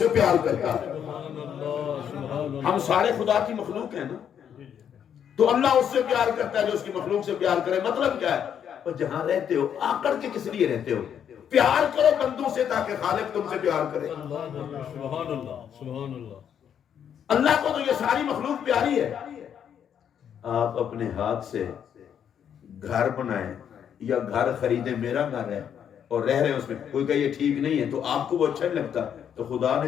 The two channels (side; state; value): right; quieter; 8.7 dB